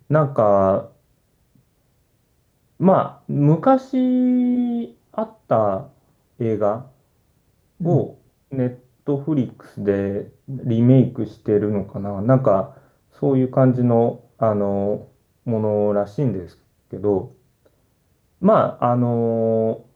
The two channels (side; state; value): both; identical; correlation 1.00